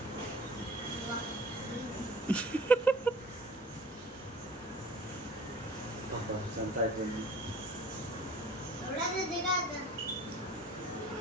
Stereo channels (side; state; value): both; normal; correlation 0.46